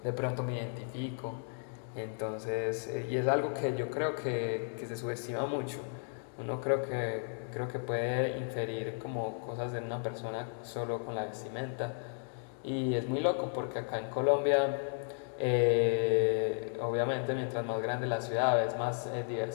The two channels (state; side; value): silent; right; 55 dB below the other